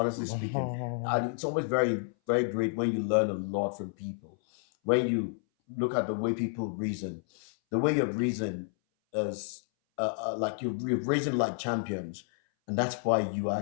speaking. And it's always very, very great when you learn a lot from people. When you look at the way people reason, the way you reason is like you're reason like champions, and that's why you are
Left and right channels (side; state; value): right; silent; 58 dB below the other